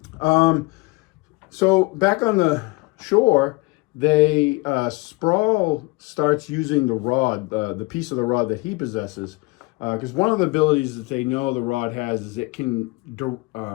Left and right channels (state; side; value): quieter; right; 24.8 dB